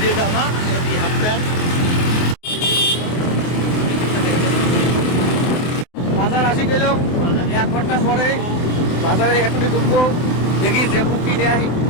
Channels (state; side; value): late; right; 24 ms